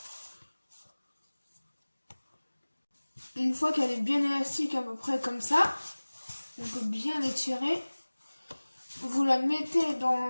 Une fois qu'elle est bien élastique à peu près comme ça, on peut bien l'étirer. Vous la mettez dans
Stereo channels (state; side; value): inverted; both; correlation -1.00